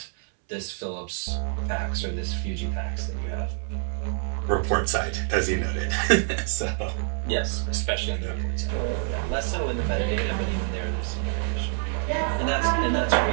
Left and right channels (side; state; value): left; silent; 61 dB below the other